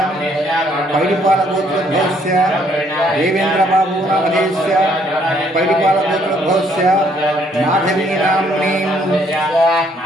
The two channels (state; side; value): normal; both; correlation 0.67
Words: पैडिपालगोत्रस्य देवेन्द्रबाबूनामधेयस्य पैडिपालगोत्रस्य माधवीनाम्नी